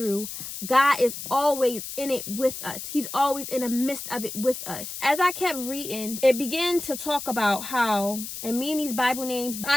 God is always in it with us. He's always in the midst of it with us. As I kept reading, it began to talk about how, and me and these Bible names,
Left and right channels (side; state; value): left; noise; hiss, 8 dB below the sound